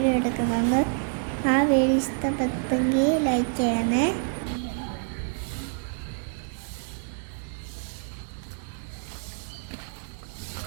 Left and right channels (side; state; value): left; silent; 60 dB below the other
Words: എടുക്കുന്നുണ്ട്. ആ വീഡിയോ ഇഷ്ടപ്പെട്ടെങ്കിൽ ലൈക്ക് ചെയ്യണേ.